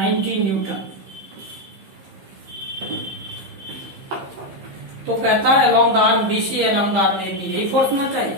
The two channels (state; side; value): late; left; 15 ms